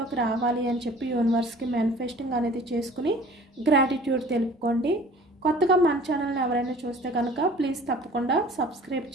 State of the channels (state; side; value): normal; both; correlation 0.48